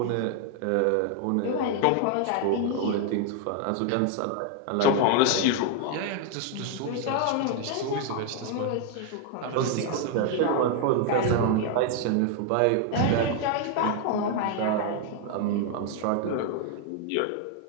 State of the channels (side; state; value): both; different; correlation 0.00